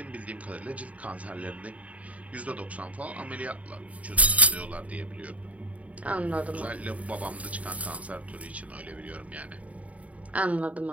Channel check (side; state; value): left; late; 0.068 ms